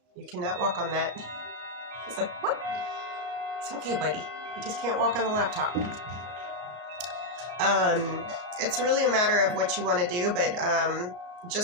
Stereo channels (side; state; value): left; late; 33 ms